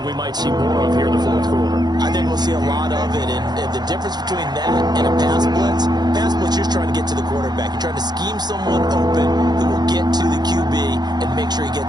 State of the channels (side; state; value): left; late; 0.20 ms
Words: we might see more of here in the 4th quarter. I think we'll see a lot of it. And the difference between that and a pass blitz, you're trying to get to the quarterback. You're trying to scheme someone open who will get to the QB and make sure he